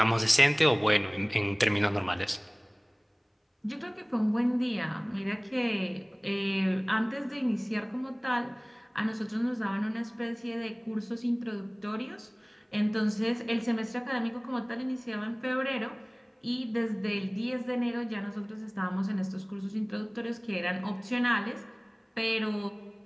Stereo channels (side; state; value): both; identical; correlation 1.00